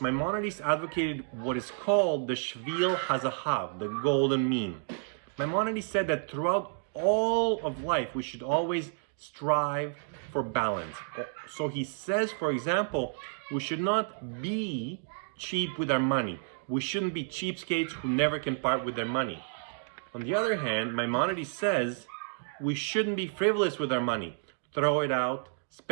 Maimonides advocated what is called the Shvil Hazahav, the golden mean. Maimonides said that throughout all of life, we should always strive for balance. So he says, for example, we should not be cheap with our money. We shouldn't be cheapskates who never can part with their money. On the other hand, Maimonides says we shouldn't be frivolous with our money. Throw it out,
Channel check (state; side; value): silent; left; digital silence